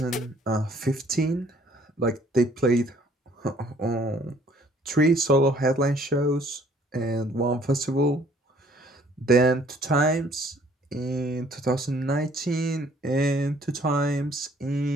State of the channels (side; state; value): both; normal; correlation 0.60